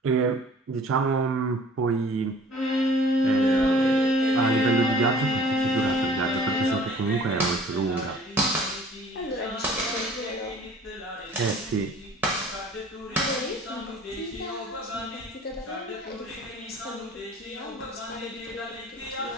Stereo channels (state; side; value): normal; both; correlation 0.50